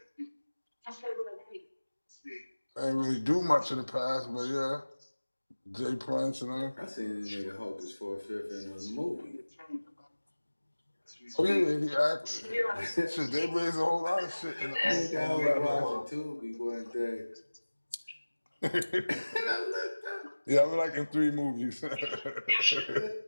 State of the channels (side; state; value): both; inverted; correlation -1.00